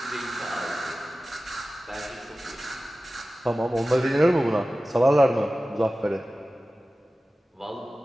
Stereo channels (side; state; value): both; normal; correlation 0.96